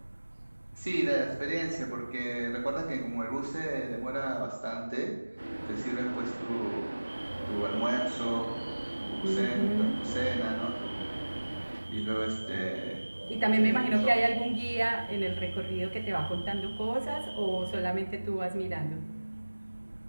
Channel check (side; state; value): both; inverted; correlation -1.00